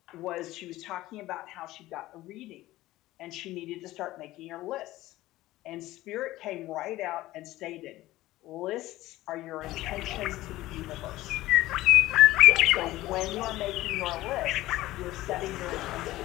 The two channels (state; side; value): quieter; right; 16.8 dB